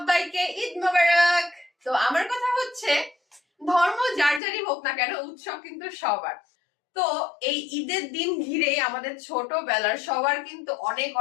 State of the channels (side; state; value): right; drops out; at 4.4 s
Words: ঈদ মোবারক। তো আমার কথা হচ্ছে ধর্ম যার যারই হোক না কেন উৎসব কিন্তু সবার। তো এই ঈদের দিন ঘিরে আমাদের ছোটবেলার সবার কিন্তু অনেক